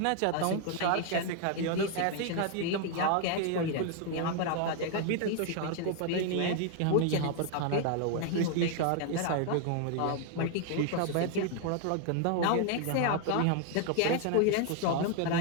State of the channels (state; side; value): different; both; correlation 0.00